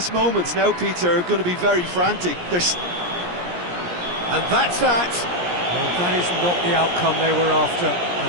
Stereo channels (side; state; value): left; late; 17 ms